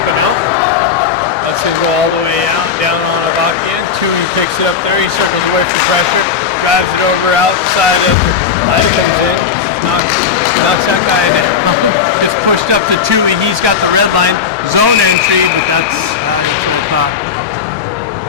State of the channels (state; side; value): quieter; right; 6.6 dB